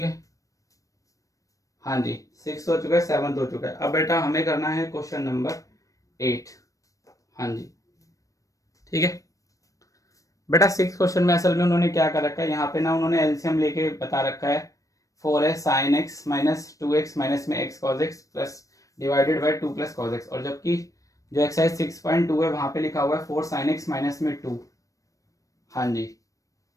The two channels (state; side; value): late; right; 0.16 ms